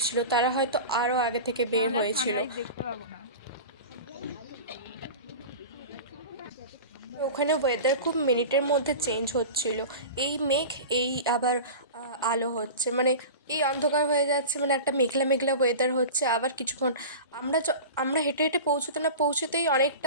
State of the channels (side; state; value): both; inverted; correlation -0.32